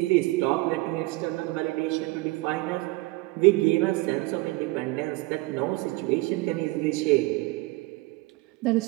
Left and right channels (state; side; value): quieter; left; 22.0 dB